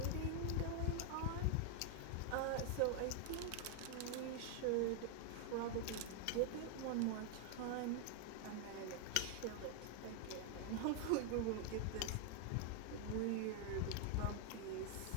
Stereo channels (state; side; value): different; both; correlation 0.00